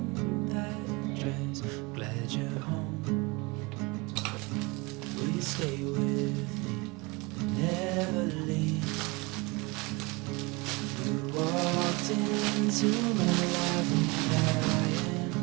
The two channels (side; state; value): left; quieter; 26.2 dB